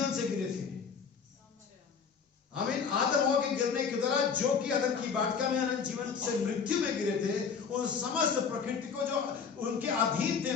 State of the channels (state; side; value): quieter; right; 6.2 dB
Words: से गिरे थे। आमीन। आदम हवा के गिरने के द्वारा जो कि अदन की वाटिका में अनंत जीवन से मृत्यु में गिरे थे, उन समस्त प्रकृति को जो उनके अधीन थे